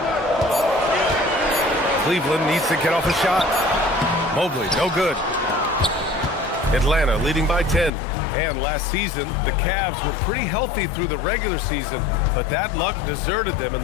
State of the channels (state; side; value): drops out; right; at 7.9 s